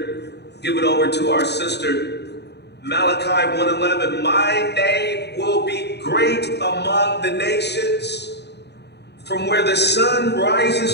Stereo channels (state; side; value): late; right; 0.49 ms